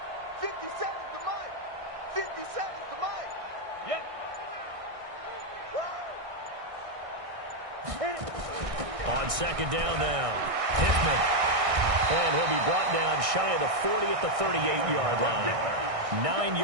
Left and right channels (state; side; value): late; left; 1.6 ms